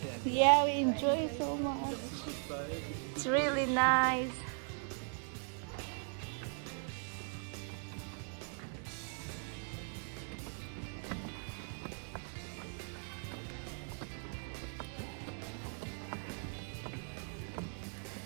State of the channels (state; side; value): silent; left; 52 dB below the other